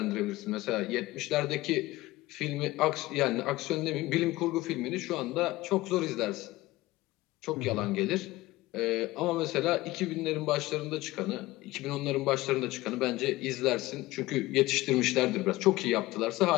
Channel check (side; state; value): right; quieter; 18.6 dB